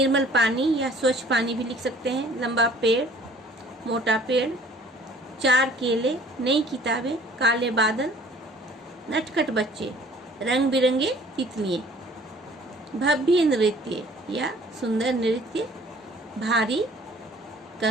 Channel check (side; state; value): both; normal; correlation 0.53